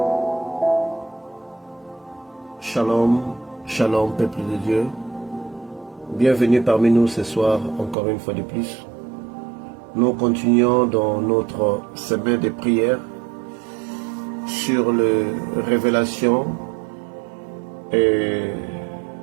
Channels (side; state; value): left; drops out; at 8.0 s